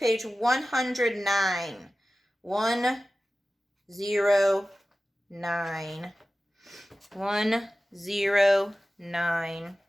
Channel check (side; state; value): both; normal; correlation 0.96